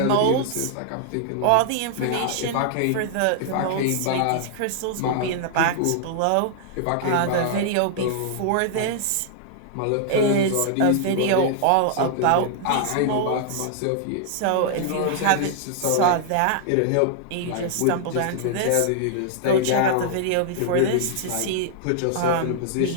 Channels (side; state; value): both; different; correlation -0.01